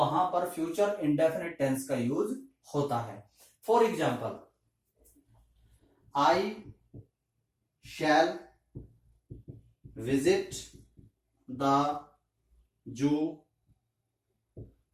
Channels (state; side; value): identical; both; correlation 1.00